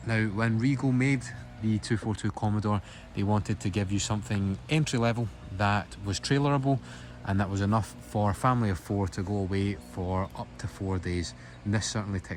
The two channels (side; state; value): both; identical; correlation 1.00